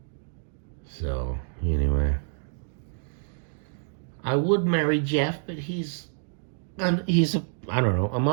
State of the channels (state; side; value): silent; left; digital silence